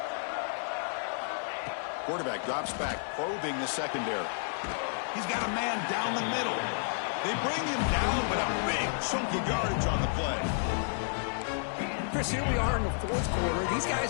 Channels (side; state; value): right; silent; digital silence